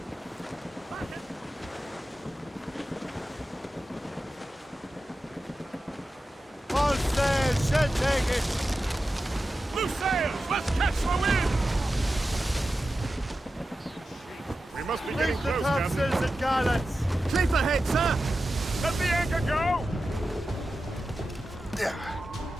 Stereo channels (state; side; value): normal; both; correlation 0.92